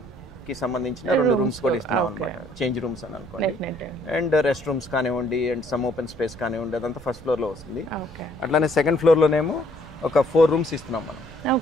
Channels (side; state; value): right; noise; rumble, 19 dB below the sound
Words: కి సంబంధించిన 2 రూమ్స్ కూడా ఇస్తున్నాం అనమాట. చేంజ్ రూమ్స్ అని అనుకోండి, అండ్ రెస్ట్ రూమ్స్ కానివ్వండి, అండ్ సమ్ ఓపెన్ స్పేస్ కానివ్వండి, అదంతా ఫస్ట్ ఫ్లోర్ లో వస్తుంది. అట్లానే సెకండ్ ఫ్లోర్ లోనేమో ఒక 4 rooms ఇస్తున్నాం మనం.